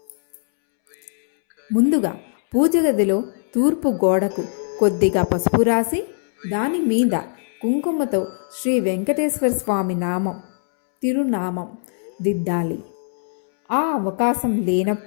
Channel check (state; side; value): silent; right; 65 dB below the other